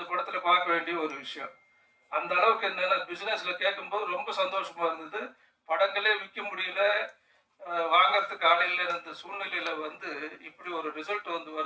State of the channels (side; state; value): both; identical; correlation 1.00